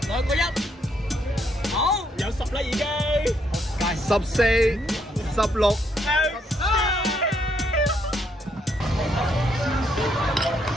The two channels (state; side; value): normal; both; correlation 0.73